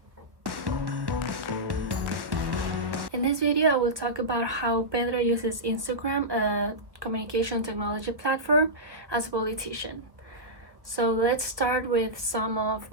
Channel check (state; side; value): late; left; 1.1 ms